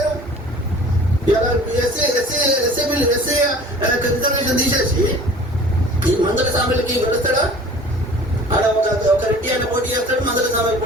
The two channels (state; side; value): normal; both; correlation 0.46